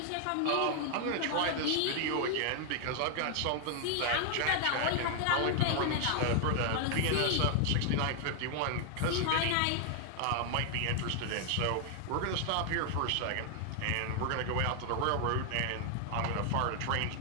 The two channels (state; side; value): different; both; correlation 0.00